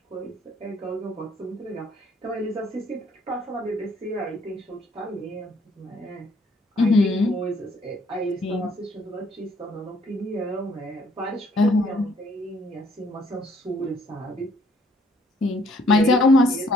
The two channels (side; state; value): both; normal; correlation 0.65